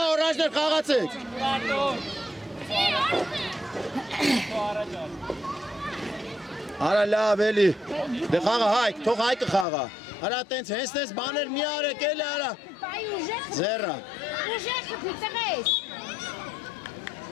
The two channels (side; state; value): right; drops out; at 9.7 s